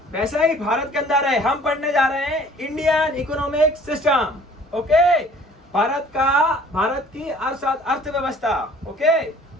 वैसा ही भारत के अंदर है। हम पढ़ने जा रहे हैं Indian economic system. Okay, Bharat की अर्थव्यवस्था। ओके,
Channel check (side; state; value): both; normal; correlation 0.52